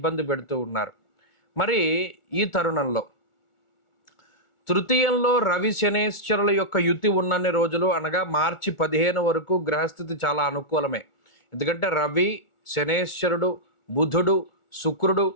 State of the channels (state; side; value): late; right; 1.4 ms